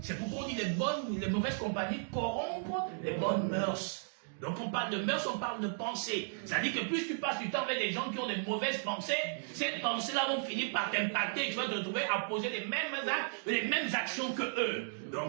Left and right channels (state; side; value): silent; left; digital silence